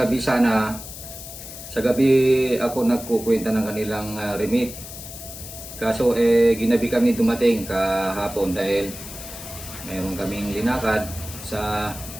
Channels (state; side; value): noise; left; hiss, 12 dB below the sound